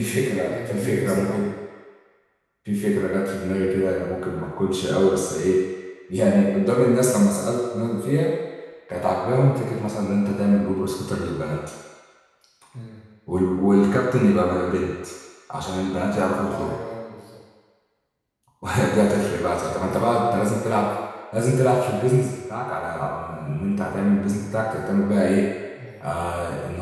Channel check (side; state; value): both; identical; correlation 1.00